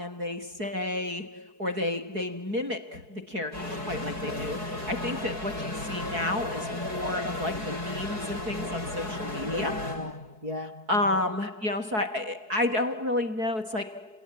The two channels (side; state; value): left; late; 4.7 ms